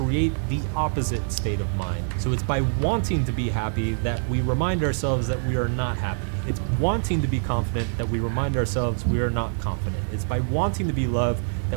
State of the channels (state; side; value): silent; left; digital silence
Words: the opposite state of mind. So it's by wanting to be happy that we remind ourselves that we are not happy. It's wanting to be confident that we remind ourselves we are not confident. It's by wanting to be loved